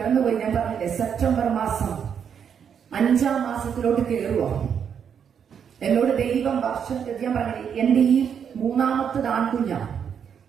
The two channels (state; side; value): quieter; left; 7.7 dB